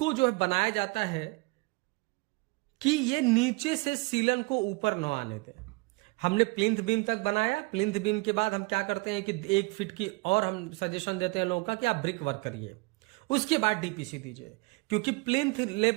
जो बनाया जाता है कि ये नीचे से सीलन को ऊपर न आने दे। हमने प्लिंथ बीम तक बनाया, प्लिंथ बीम के बाद हम क्या करते हैं कि 1 फीट की और हम सजेशन देते हैं लोगों का कि आप ब्रिक वर्क करिए, उसके बाद डीपीसी दीजिए, क्योंकि प्लिंथ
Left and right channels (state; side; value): quieter; left; 26.9 dB